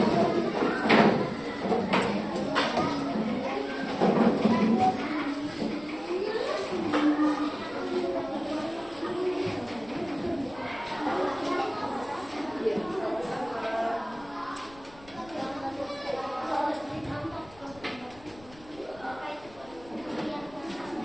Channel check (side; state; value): left; noise; rumble, 23 dB below the sound